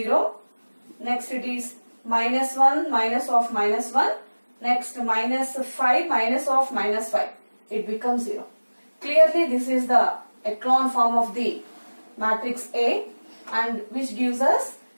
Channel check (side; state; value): both; inverted; correlation -1.00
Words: Next it is minus 1 minus of minus 1. Next minus 5 minus of minus 5. It becomes 0. Clearly this is the echelon form of the matrix A, and which gives us